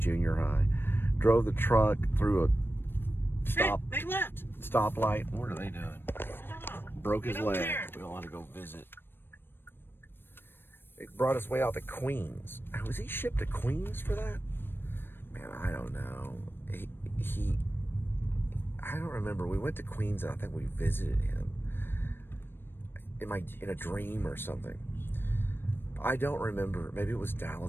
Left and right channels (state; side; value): late; right; 0.10 ms